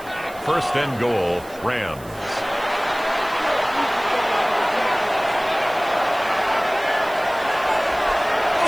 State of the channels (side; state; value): right; noise; hiss, 21 dB below the sound